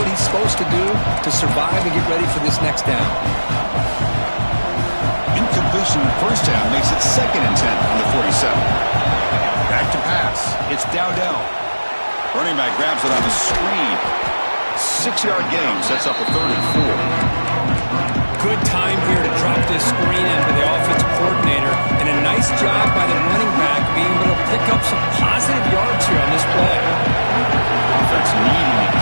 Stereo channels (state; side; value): inverted; both; correlation -1.00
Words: he's supposed to do to survive and get ready for this next down. Incompletion first down makes it 2nd and 10 on the 47. Back to pass. It's Dowdell. Running back grabs it on the screen. 6-yard gain sets up a 3rd and 4. Good time here to drop this screen into the offensive coordinator, and a nice job by the running back being able to pick up some positive yards here on this play. Offense needing to